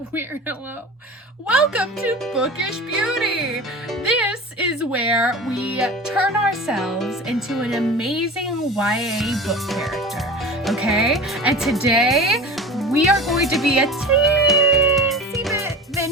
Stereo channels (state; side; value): normal; both; correlation 0.34